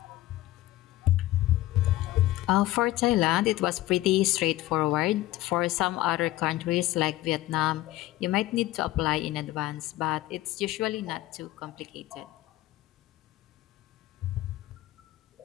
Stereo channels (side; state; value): right; quieter; 16.5 dB